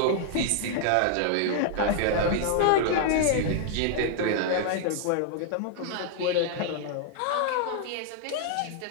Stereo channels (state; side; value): different; both; correlation 0.00